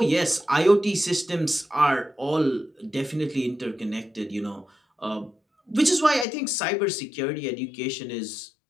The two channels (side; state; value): right; drops out; at 6.2 s